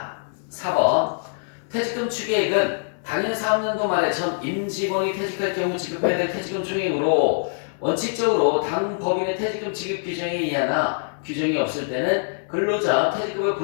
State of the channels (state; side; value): silent; right; digital silence